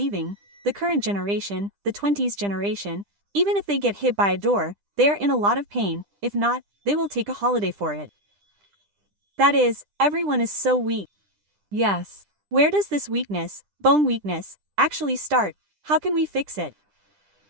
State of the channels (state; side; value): late; left; 10 ms